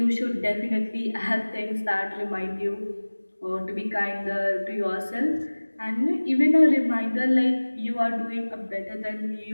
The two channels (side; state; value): both; inverted; correlation -1.00